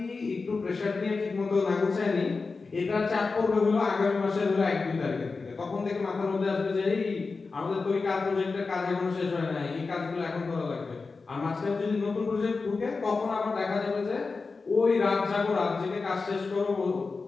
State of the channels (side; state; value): right; quieter; 4.2 dB